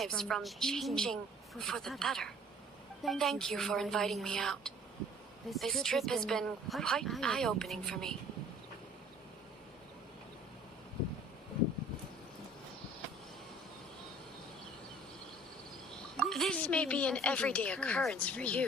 from changing for the better. Thank you for inviting me out. This trip has been quite eye-opening for me. This may be an everyday occurrence for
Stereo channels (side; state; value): both; normal; correlation 0.52